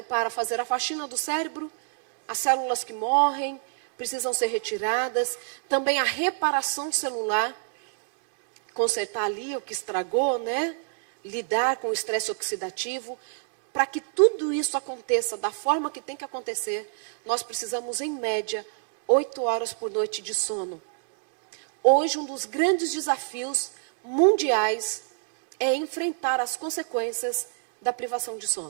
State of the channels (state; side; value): silent; left; digital silence